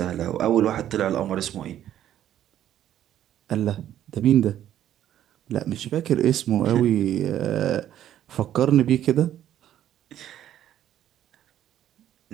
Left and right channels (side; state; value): left; quieter; 11.5 dB